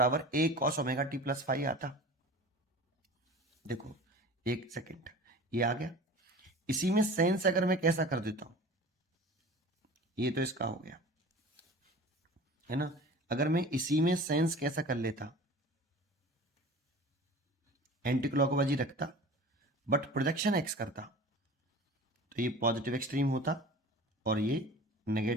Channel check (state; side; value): normal; both; correlation 0.39